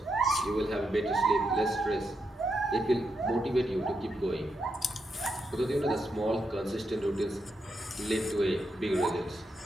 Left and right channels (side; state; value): both; normal; correlation 0.83